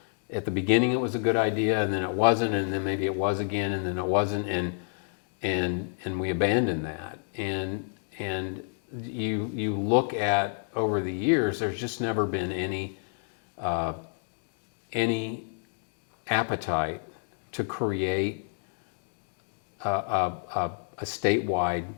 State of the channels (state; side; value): silent; right; 59 dB below the other